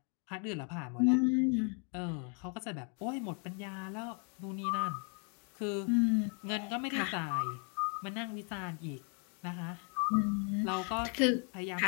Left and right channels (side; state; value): right; quieter; 39.3 dB